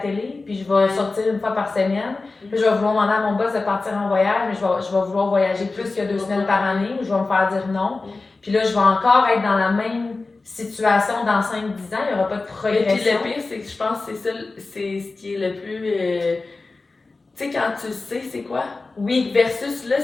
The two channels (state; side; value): quieter; right; 3.6 dB